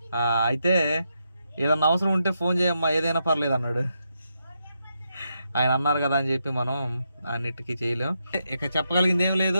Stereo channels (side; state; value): both; inverted; correlation -0.83